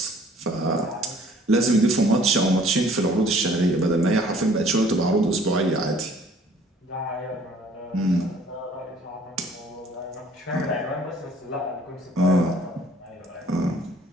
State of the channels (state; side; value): normal; both; correlation 0.56